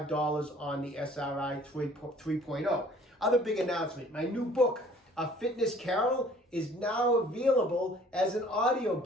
on the SRI 3.0. Other big announcement, my new book, A Fitness Carol, is now available as an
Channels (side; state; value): both; normal; correlation 0.54